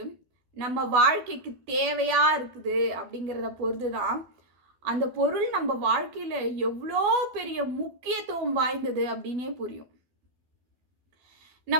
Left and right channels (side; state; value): left; late; 12 ms